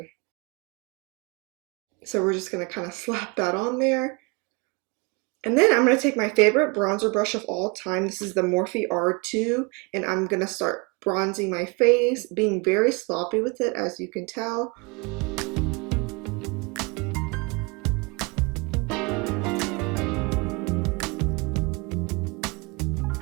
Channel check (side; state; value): left; quieter; 29.2 dB